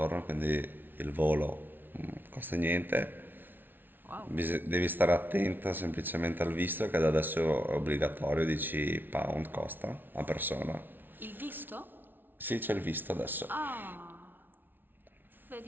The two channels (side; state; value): left; late; 0.094 ms